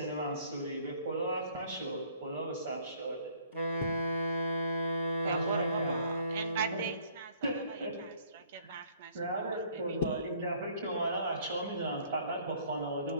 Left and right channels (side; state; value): both; inverted; correlation -0.60